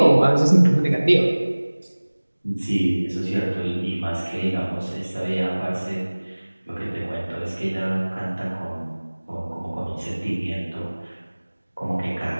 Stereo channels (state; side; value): inverted; both; correlation -1.00